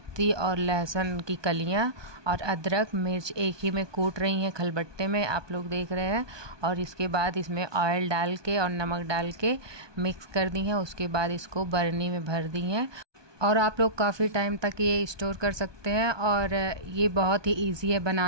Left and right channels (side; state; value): left; late; 1.2 ms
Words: और लहसुन की कलियाँ और अदरक मिर्च एक ही में कूट रही हैं खलबट्टे में, आप लोग देख रहे हैं। और इसके बाद इसमें ऑयल डाल के और नमक डाल के मिक्स कर दी हैं। उसके बाद इसको बरनी में भर दी हैं और आप लोग काफ़ी टाइम तक ये स्टोर कर सकते हैं। और ये बहुत ही इजी है